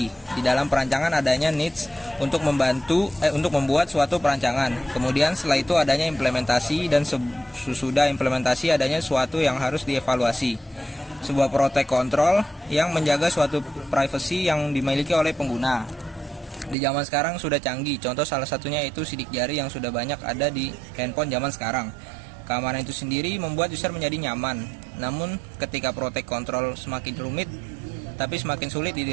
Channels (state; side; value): drops out; left; at 16.8 s